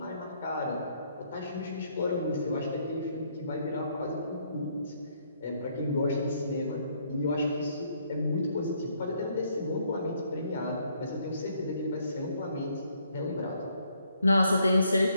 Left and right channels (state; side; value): inverted; both; correlation -0.69